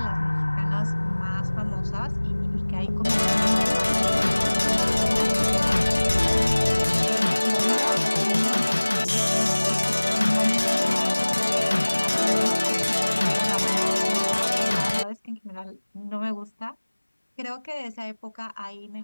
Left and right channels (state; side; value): inverted; both; correlation -1.00